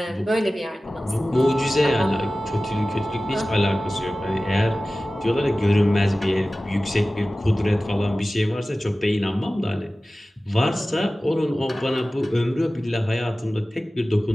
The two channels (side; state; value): both; normal; correlation 0.96